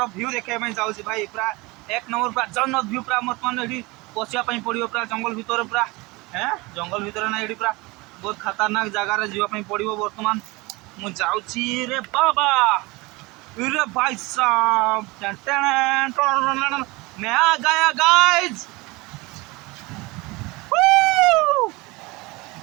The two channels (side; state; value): left; quieter; 23.8 dB